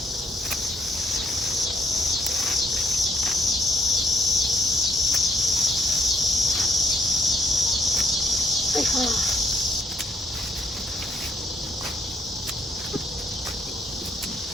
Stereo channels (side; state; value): both; normal; correlation 0.70